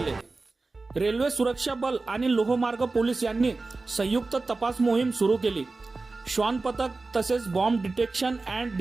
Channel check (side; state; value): left; quieter; 3.6 dB